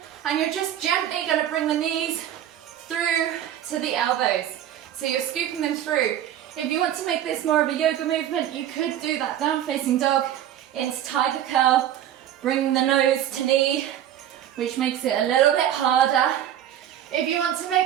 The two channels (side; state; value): left; quieter; 11.2 dB